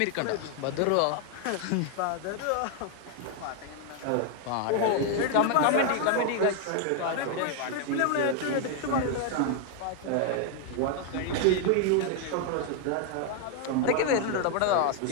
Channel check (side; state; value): both; different; correlation 0.00